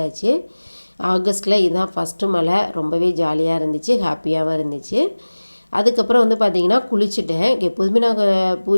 ஆகஸ்ட்டில் இதுதான் ஃபஸ்ட்டு மழை. ரொம்பவே ஜாலியாக இருந்துச்சு, ஹாப்பியாகவும் இருந்துச்சு. அதுக்கப்புறம் வந்து பார்த்திங்கன்னா குளிச்சுட்டேன். எப்போதுமே நாங்கள்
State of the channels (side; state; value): both; inverted; correlation -1.00